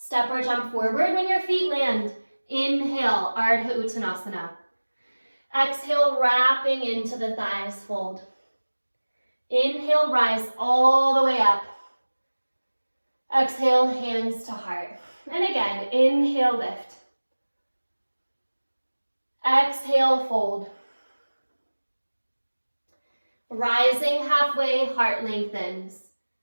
or jump forward when your feet land. Inhale, Ardha Uttanasana. Exhale, wrapping into the thighs, fold. Inhale, rise all the way up. Exhale, hands to heart. And again, inhale, lift. Exhale, fold. Rising halfway, heart lengthens.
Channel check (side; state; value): both; inverted; correlation -1.00